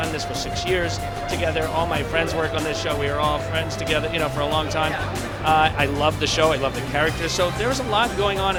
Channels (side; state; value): both; identical; correlation 1.00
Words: this for 6 years together. All my friends work on this show. We were all friends together, for a long time. I loved the show. I loved the characters. So there was a lot going on